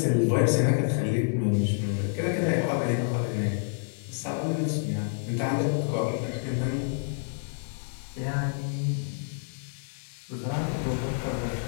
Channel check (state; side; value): silent; right; digital silence